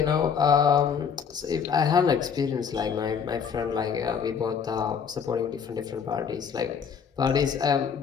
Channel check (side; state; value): right; quieter; 6.9 dB